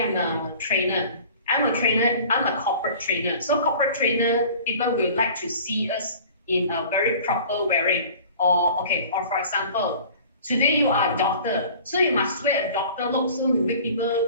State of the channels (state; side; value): inverted; both; correlation -0.46